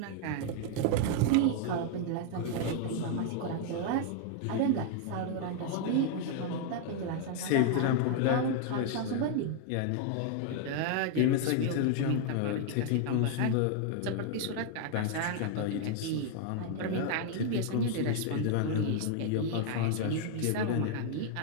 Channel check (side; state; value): both; different; correlation 0.00